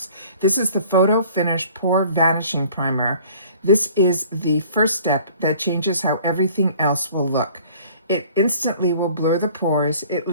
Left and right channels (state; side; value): inverted; both; correlation -0.51